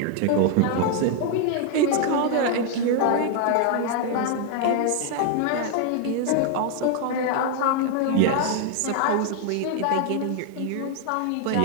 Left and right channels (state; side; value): different; both; correlation 0.00